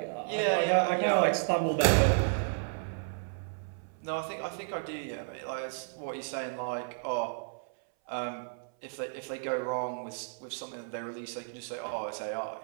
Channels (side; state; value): left; silent; 56 dB below the other